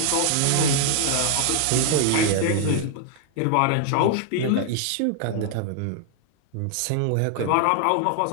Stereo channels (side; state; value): both; different; correlation 0.00